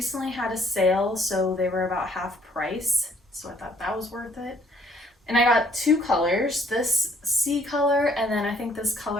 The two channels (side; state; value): both; normal; correlation 0.63